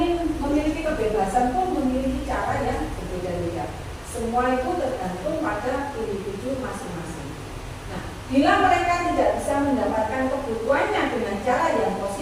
memiliki kebebasan pun memiliki cara yang berbeda-beda. Semua itu tergantung pada individu masing-masing. Nah, bila mereka tidak bisa mendapatkan kebutuhannya dengan cara yang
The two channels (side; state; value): both; identical; correlation 1.00